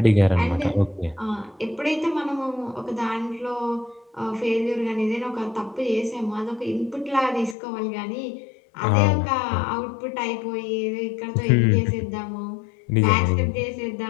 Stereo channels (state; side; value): drops out; right; at 7.6 s